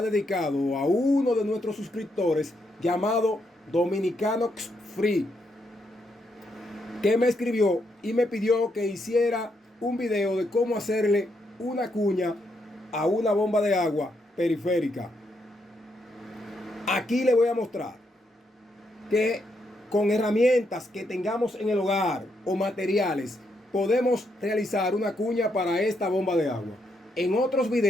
a uno de nuestros suscriptores llamado Dominicanox Free, que me escribió y me pidió que hiciera un video de cómo hacerle una cuña a una bomba de agua periférica. Aquí le voy a mostrar que con herramientas que tengamos en el hogar o materiales podemos realizar una cuña para esta bomba de agua. En otros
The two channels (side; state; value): both; normal; correlation 0.78